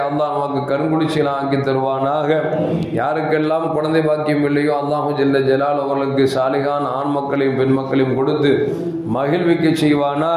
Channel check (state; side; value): identical; both; correlation 1.00